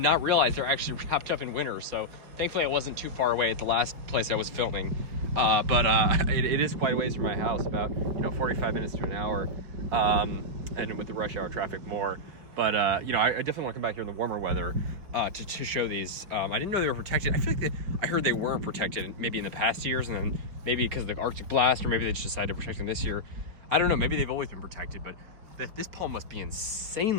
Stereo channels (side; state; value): left; late; 4.9 ms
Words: realize they're actually wrapped up in winter. So thankfully I wasn't too far away at the last place I was filming. It is quite a ways from my house, about 45 minutes to an hour, and with the rush hour traffic more. But I definitely want to come back here in the warmer weather to show these. I didn't know they were protected. I feel like I heard they weren't protected maybe in the past years, and then maybe because of the Arctic blast, or maybe they just decided to protect them this year. I don't know. Maybe they've always been protected, but this palm must be